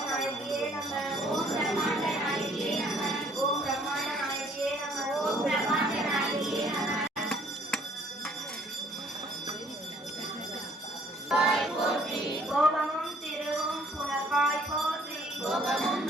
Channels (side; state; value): both; normal; correlation 0.61